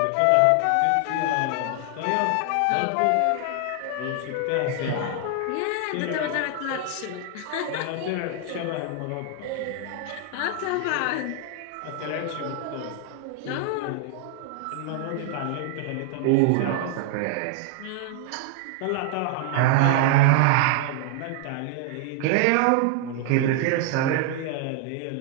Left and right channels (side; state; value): both; different; correlation 0.00